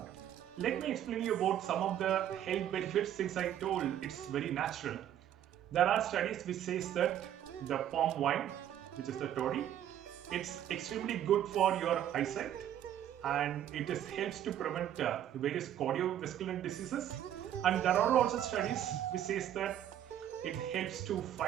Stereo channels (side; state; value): left; quieter; 11.0 dB